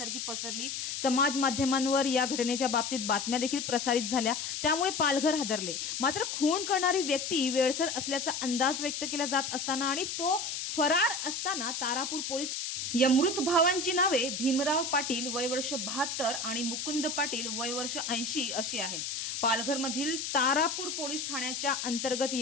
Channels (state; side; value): noise; left; hiss, 4 dB below the sound